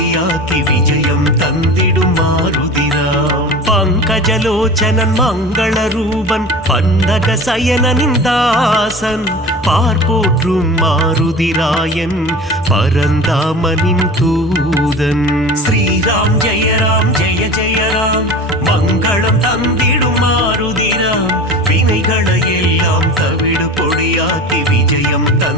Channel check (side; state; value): both; normal; correlation 0.35